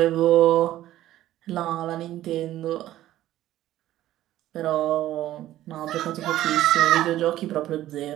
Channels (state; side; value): quieter; left; 14.0 dB